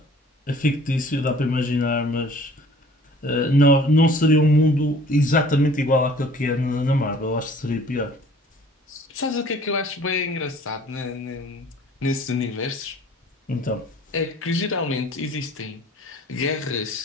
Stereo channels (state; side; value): normal; both; correlation 0.51